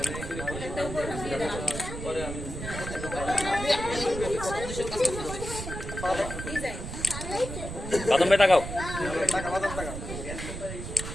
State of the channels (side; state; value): right; noise; rumble, 7 dB below the sound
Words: বাদাম ভাই তাকাও